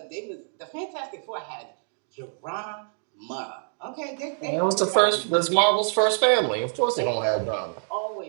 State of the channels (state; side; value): silent; left; 58 dB below the other